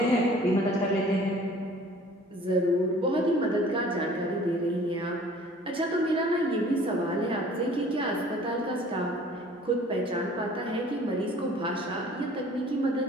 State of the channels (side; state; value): both; normal; correlation 0.50